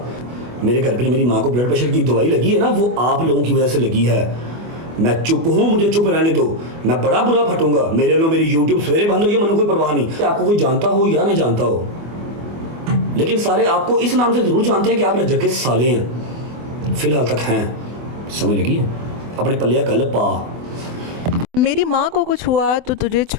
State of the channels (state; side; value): late; left; 24 ms